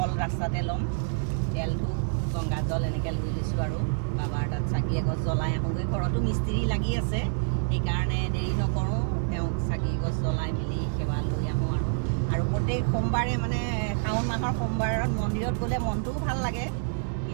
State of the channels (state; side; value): silent; left; digital silence